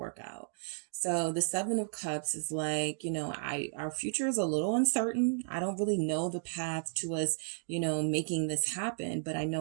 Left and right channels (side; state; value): left; silent; digital silence